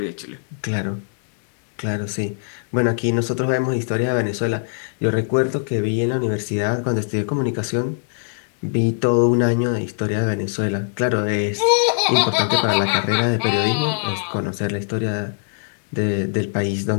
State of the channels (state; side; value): silent; right; digital silence